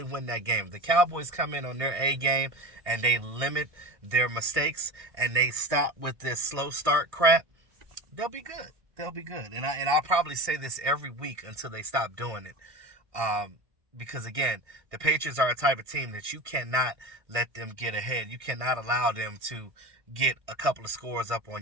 win that game. The Cowboys come in on their A game, and they limit their mistakes, and they stop with this slow start crap. They'll be good. They'll be good. And I'll probably say this every week until they stop doing it. Because, again, the Patriots are a type of team that you cannot let them get ahead. You cannot allow them to get a couple of scores up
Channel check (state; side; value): late; left; 1.6 ms